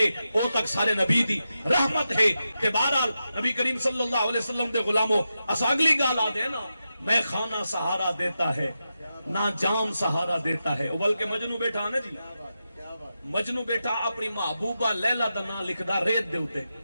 او تک سارے نبی دی رحمت ہے۔ کہ بہرحال نبی کریم صلی اللہ علیہ وسلم دے غلاموں اس اگلی گال آدھے نا، میں خانہ سہارا دیتا ہے نہ جام سہارا دیتا ہے، بلکہ مجنو بیٹھا نا جی، مجنو بیٹھا اپنی محبوبہ لیلہ دا نا لکھدا ریت دے ہوتے،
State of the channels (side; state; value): both; inverted; correlation -0.89